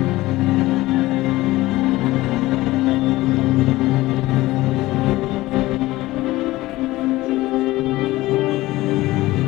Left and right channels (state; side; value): quieter; right; 18.1 dB